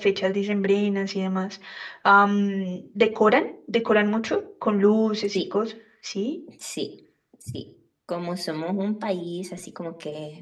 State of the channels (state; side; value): identical; both; correlation 1.00